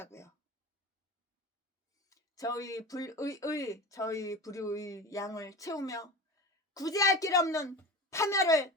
저희 불의의 양을 채우며 구제할 길 없는 파멸을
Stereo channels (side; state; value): both; normal; correlation 0.31